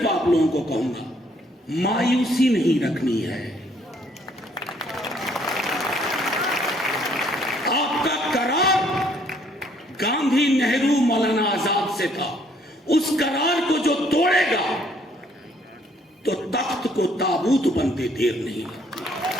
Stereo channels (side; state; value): both; normal; correlation 0.65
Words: आप लोगों को कहूंगा, मायूसी नहीं रखनी है। आपका करार गांधी, नेहरू, मौलाना आजाद से था, उस करार को जो तोड़ेगा तो तख्त को ताबूत बनते देर नहीं लगती।